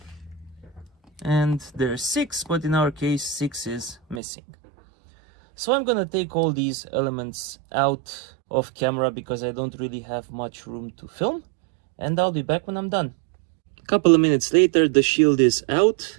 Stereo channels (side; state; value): left; drops out; at 4.2 s